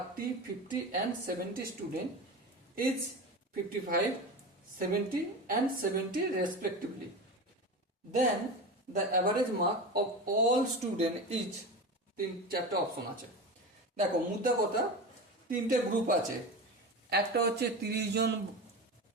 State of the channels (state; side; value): normal; both; correlation 0.26